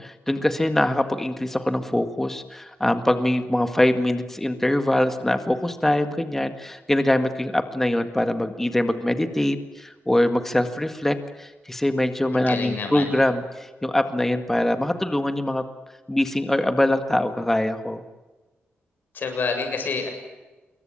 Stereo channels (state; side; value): normal; both; correlation 0.96